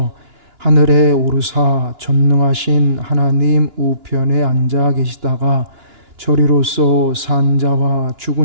하늘에 오르사 전능하신 하나님 우편에 앉아 계시다가 저리로서 산 자와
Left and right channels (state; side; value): late; left; 2.9 ms